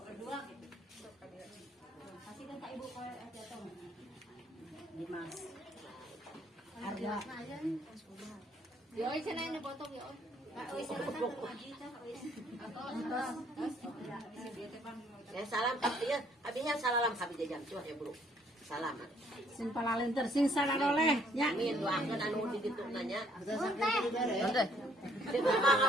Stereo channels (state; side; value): normal; both; correlation 0.64